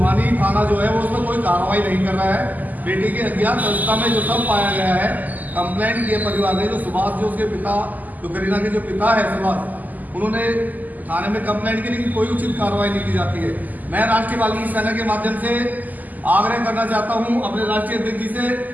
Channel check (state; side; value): late; left; 0.082 ms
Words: थाना जो है वो उसमें कोई कार्रवाई नहीं कर रहा है। बेटी की अज्ञात अवस्था में जो सब पाया गया है, कंप्लेंट किए परिवार ने, जो सुभाष, जो उसके पिता, जो करीना के जो पिता है सुभाष, उन्होंने थाने में कंप्लेंट की, लेकिन कोई उचित कार्रवाई नहीं की जाती है। मैं राष्ट्रीय वाल्मीकि सेना के माध्यम से आग्रह करना चाहता हूं अपने राष्ट्रीय अध्यक्ष जी से